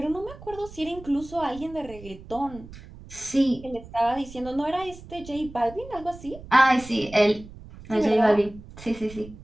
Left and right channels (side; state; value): right; noise; rumble, 17 dB below the sound